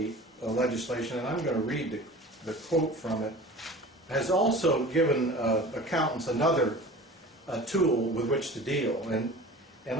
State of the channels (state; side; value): normal; both; correlation 0.39